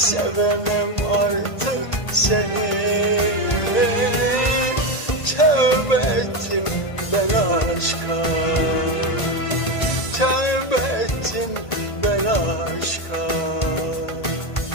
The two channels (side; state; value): right; late; 1.5 ms